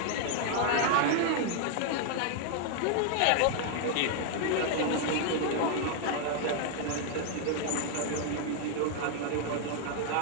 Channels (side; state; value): both; different; correlation 0.00